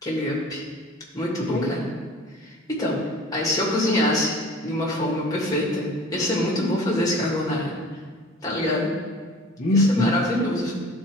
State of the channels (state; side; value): normal; both; correlation 0.44